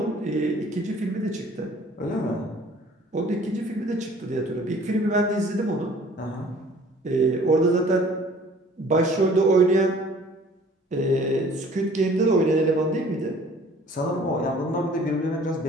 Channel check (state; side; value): normal; both; correlation 0.52